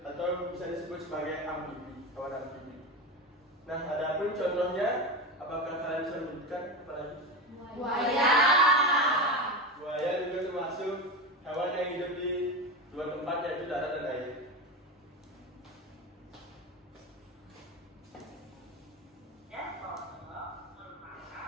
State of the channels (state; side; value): normal; both; correlation 0.21